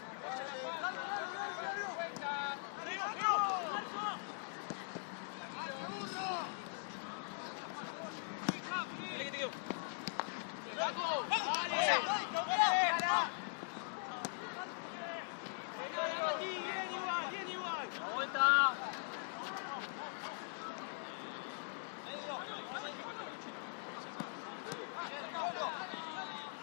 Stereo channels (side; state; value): right; silent; digital silence